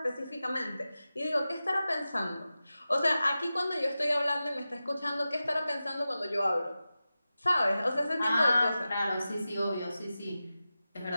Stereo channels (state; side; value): inverted; both; correlation -0.94